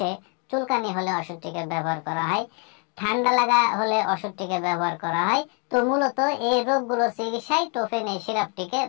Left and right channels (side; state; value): right; quieter; 36.9 dB